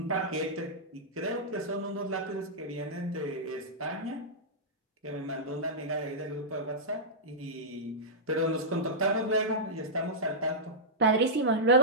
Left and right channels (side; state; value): both; normal; correlation -0.12